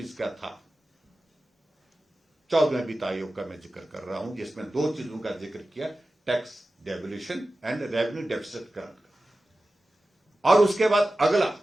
का था। 14वें वित्त आयोग का मैं जिक्र कर रहा हूं, जिसमें दो चीजों का जिक्र किया, tax devolution and revenue deficit grant का। और उसके बाद अगला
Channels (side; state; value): both; normal; correlation 0.95